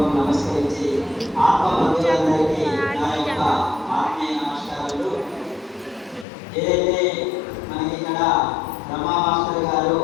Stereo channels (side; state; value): right; drops out; at 6.2 s